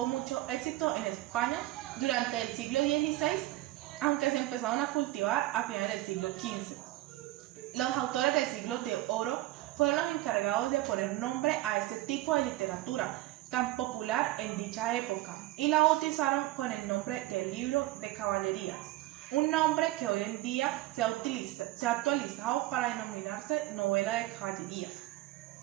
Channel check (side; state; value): left; quieter; 16.9 dB